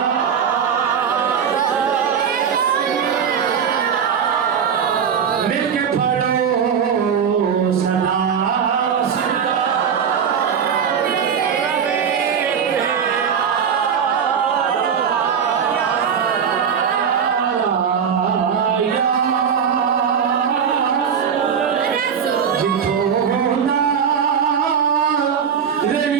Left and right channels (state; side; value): quieter; left; 7.4 dB